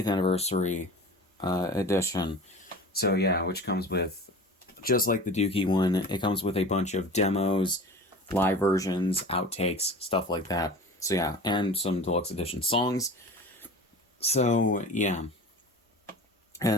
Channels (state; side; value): normal; both; correlation 0.37